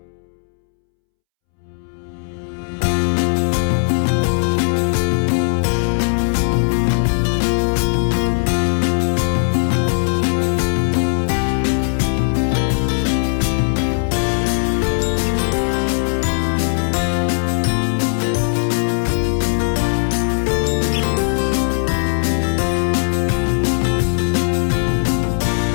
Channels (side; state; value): right; silent; 67 dB below the other